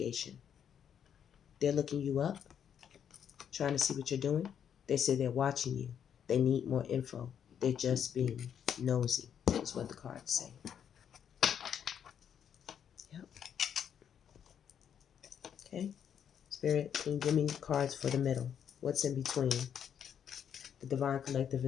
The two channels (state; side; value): quieter; right; 8.5 dB